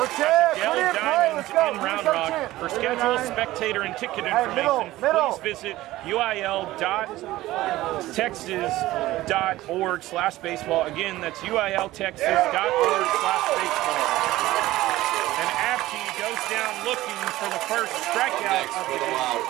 at the Yellow Diamonds in Round Rock. For schedule, spectator, and ticket information, please visit uil.texas.org/baseball. Again, that's uiltexas.org/baseball. And Abkey goes down looking for the first strikeout of the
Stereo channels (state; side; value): quieter; left; 16.7 dB